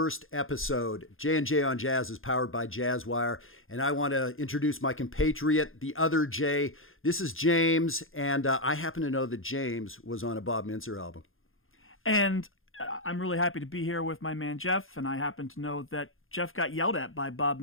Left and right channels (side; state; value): right; late; 0.60 ms